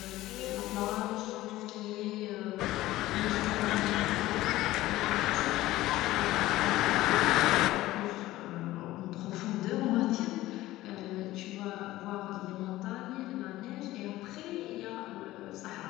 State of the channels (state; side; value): quieter; right; 16.6 dB